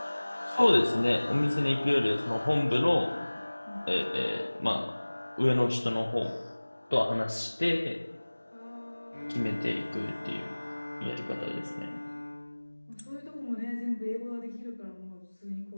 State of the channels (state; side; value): inverted; both; correlation -1.00